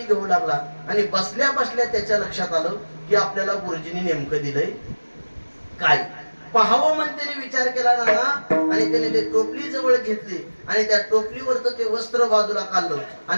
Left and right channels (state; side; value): inverted; both; correlation -1.00